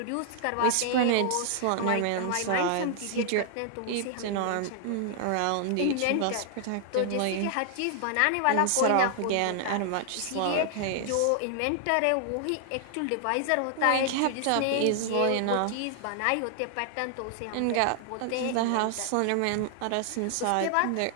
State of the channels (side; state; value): both; different; correlation 0.00